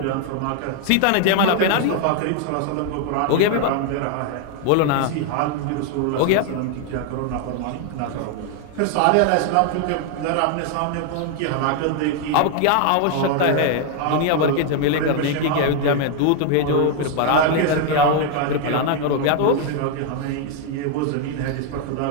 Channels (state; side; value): different; both; correlation 0.00